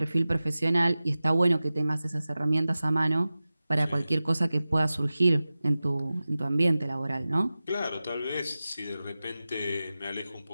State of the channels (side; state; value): both; inverted; correlation -0.96